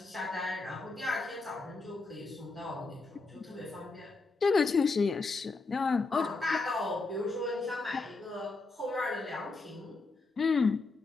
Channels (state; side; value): quieter; right; 3.7 dB